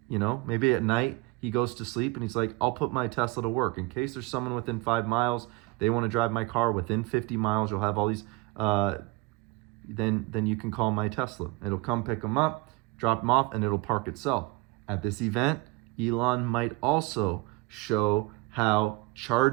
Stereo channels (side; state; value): left; quieter; 22.6 dB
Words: You know, maybe at night he goes to sleep and he's like, I'll put my Tesla to work. In case there's someone within 5 miles, they want to drive my car within 50 miles, you'll have all these, then you can call my Tesla. It'll come pick them up, drop them off, and it'll park itself. At this event, Elon might also show how